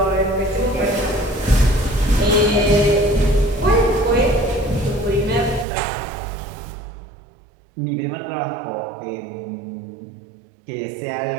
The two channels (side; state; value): left; drops out; at 5.7 s